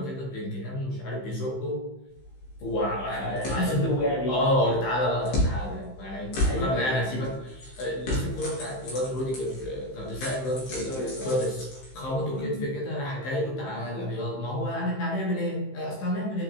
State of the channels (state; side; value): late; right; 15 ms